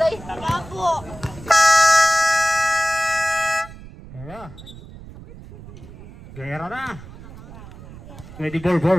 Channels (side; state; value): right; noise; rumble, 17 dB below the sound